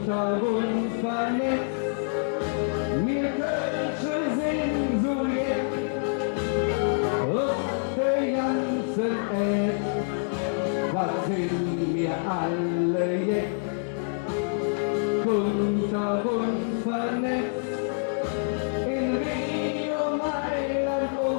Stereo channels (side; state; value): right; silent; digital silence